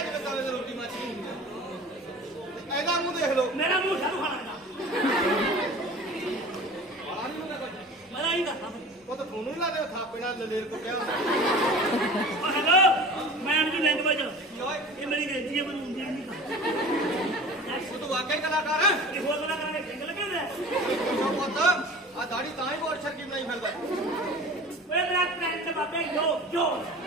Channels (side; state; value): both; normal; correlation 0.39